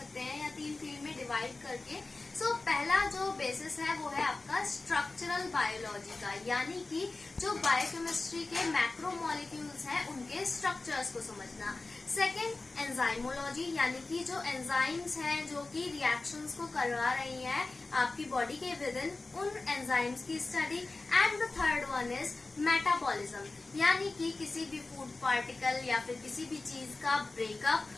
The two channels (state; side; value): quieter; right; 3.4 dB